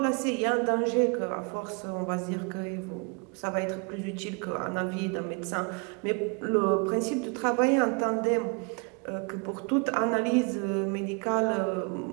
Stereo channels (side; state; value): left; quieter; 33.4 dB